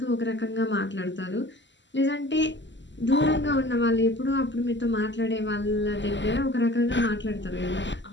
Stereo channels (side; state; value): right; late; 0.53 ms